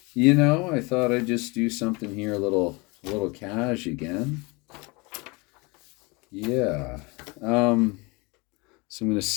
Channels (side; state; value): right; quieter; 27.3 dB